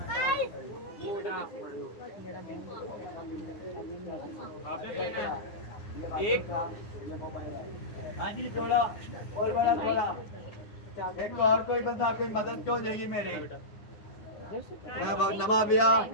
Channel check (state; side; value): late; right; 9.7 ms